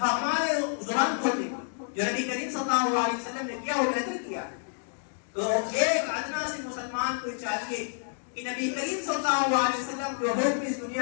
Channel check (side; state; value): right; silent; digital silence